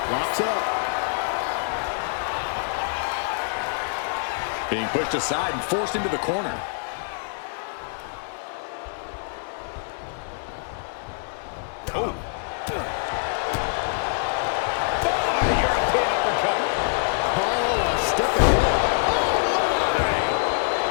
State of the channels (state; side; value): silent; right; 62 dB below the other